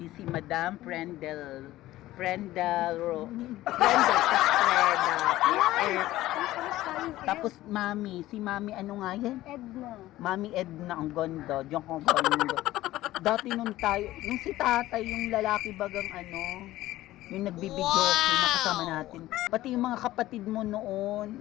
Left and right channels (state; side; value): quieter; right; 15.9 dB